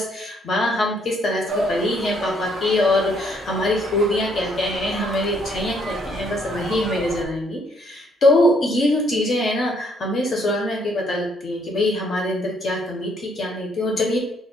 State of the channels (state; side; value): normal; both; correlation 0.68